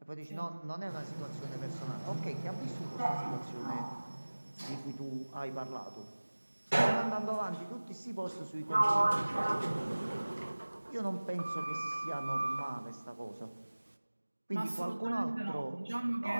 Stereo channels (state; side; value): inverted; both; correlation -1.00